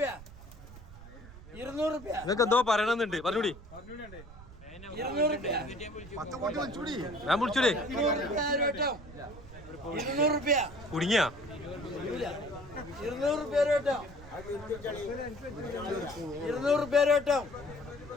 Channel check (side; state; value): right; noise; rumble, 17 dB below the sound